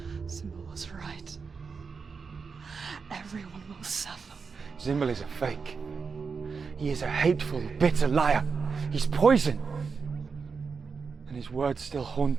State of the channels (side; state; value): left; quieter; 5.3 dB